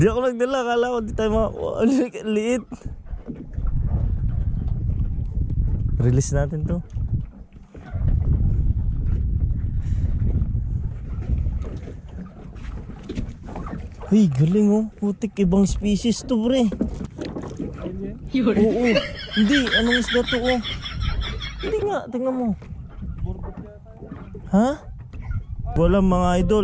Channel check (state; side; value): identical; both; correlation 1.00